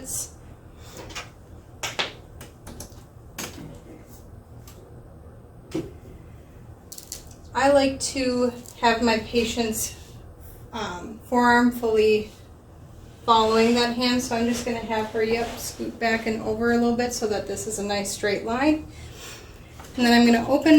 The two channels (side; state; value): both; identical; correlation 1.00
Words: I like to have my patient's forearm fully following that hand, so I'm just going to have her, scoot back and over a little bit so that this is a nice straight line. And then I'm going to open